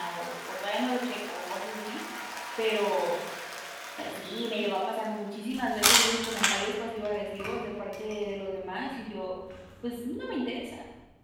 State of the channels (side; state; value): both; identical; correlation 1.00